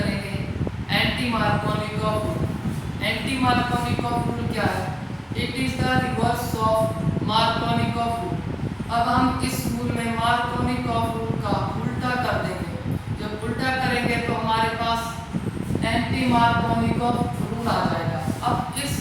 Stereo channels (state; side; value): identical; both; correlation 1.00